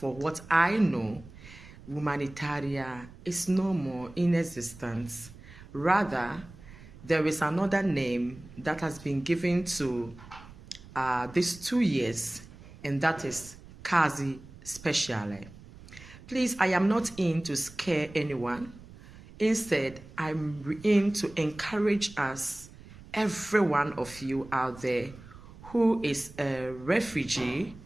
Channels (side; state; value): right; noise; rumble, 19 dB below the sound